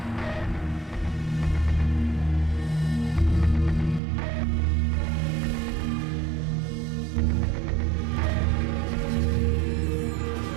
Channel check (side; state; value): left; drops out; at 4.0 s